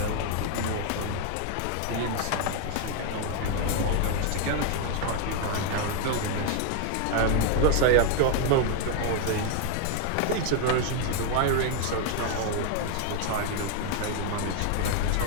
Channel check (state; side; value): different; both; correlation 0.00